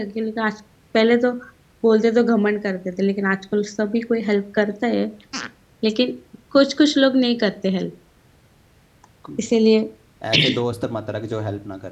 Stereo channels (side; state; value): both; identical; correlation 1.00